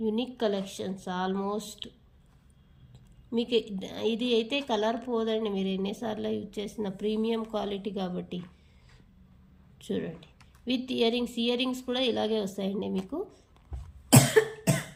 యూనిక్ కలెక్షన్స్. ఆల్మోస్ట్ మీకు ఇది అయితే కలర్ పోదండి, మీరు ఎన్నిసార్లు యూజ్ చేసిన ప్రీమియం క్వాలిటీ కాబట్టి. చూడండి, విత్ ఇయర్ రింగ్స్ కూడా ఇలాగే వస్తాయండి మీకు.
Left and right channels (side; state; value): both; identical; correlation 1.00